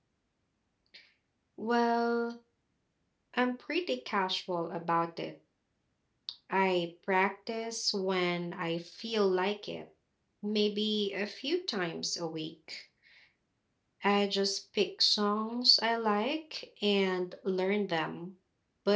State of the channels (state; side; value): identical; both; correlation 1.00